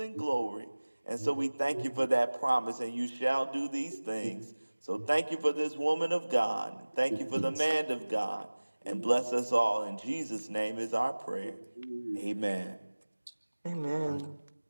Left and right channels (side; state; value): both; inverted; correlation -1.00